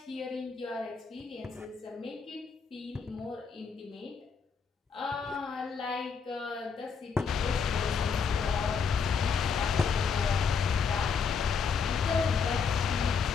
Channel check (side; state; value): right; quieter; 5.9 dB